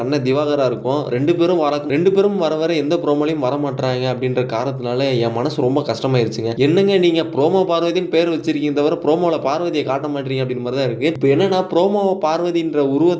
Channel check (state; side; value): identical; both; correlation 1.00